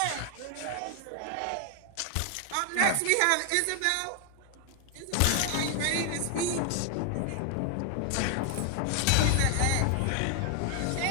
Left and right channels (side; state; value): both; different; correlation 0.00